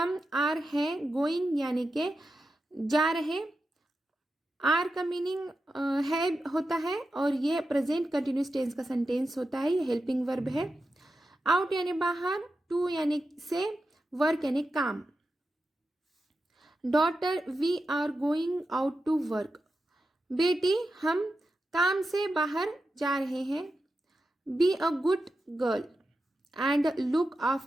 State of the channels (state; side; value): normal; both; correlation 0.90